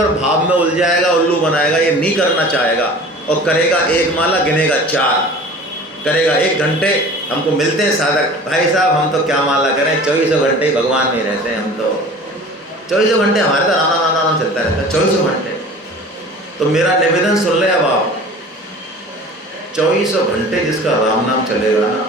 भाव में उलझाएगा, उल्लू बनाएगा, ये नहीं करना चाहेगा। और करेगा 1 माला, गिनेगा 4, करेगा 1 घंटे। हमको मिलते हैं साधक, भाई साहब हम तो क्या माला करें, 24 घंटे भगवान में रहते हैं हम तो। 24 घंटे हमारे तो राम राम राम चलता रहता है, 24 घंटे। तो मेरा निवेदन सुन ले अब आप, 24 घंटे जिसका राम नाम चलेगा ना,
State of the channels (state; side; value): normal; both; correlation 0.42